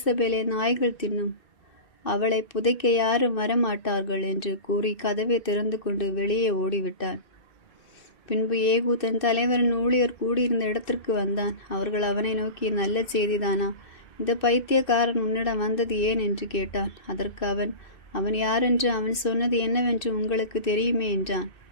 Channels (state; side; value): late; right; 2.6 ms